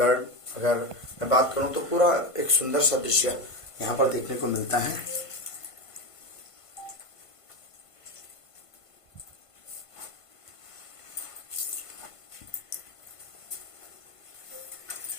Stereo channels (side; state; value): right; late; 1.5 ms